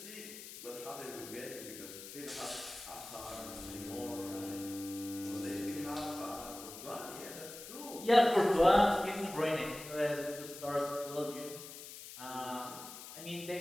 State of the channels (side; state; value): left; noise; hiss, 12 dB below the sound